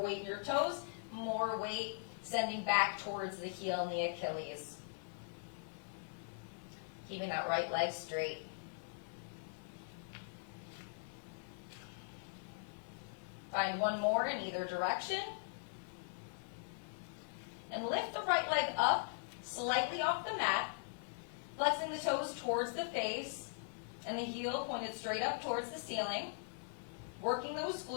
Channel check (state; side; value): silent; right; digital silence